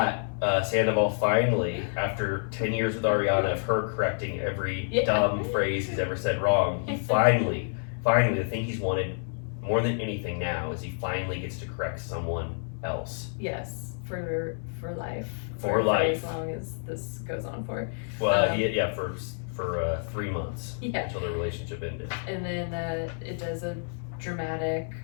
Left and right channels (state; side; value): silent; right; 59 dB below the other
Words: Sandoval finally, after 10 years with Ariana of her correcting every dumb phrase he's ever said wrong, he finally, the thing he's wanted more than anything now is he finally gets to correct someone else. Yes, for life. For life. As long as this goes on for. Well, for 3 months Yeah. until the relationship ended. And then it does a dramatic